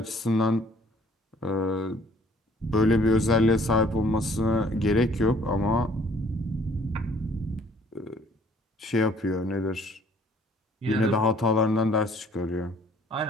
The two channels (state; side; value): normal; both; correlation 0.59